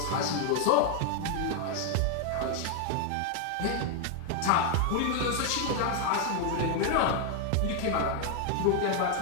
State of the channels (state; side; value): different; both; correlation 0.00